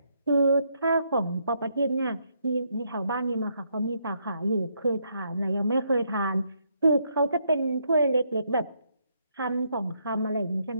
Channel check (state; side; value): inverted; both; correlation -0.75